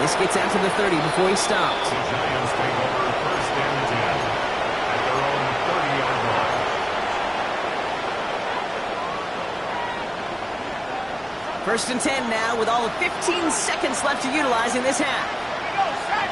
this gets out to the 30 before he stops. The Giants take over first and 10 at their own 30-yard line. First and 10 now with all of 15 seconds left to utilize in this half.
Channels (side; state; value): both; identical; correlation 1.00